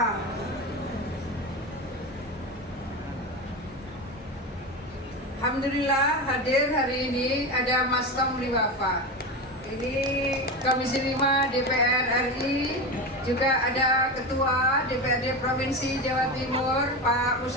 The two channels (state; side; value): normal; both; correlation 0.21